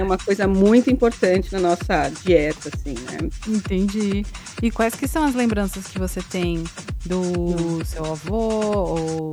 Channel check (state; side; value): identical; both; correlation 1.00